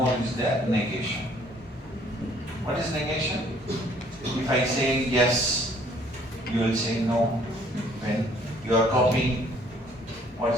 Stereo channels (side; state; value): both; normal; correlation 0.60